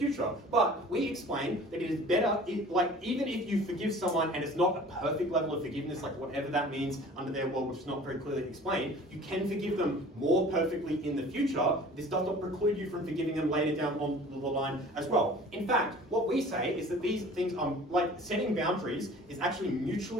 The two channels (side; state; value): both; normal; correlation 0.45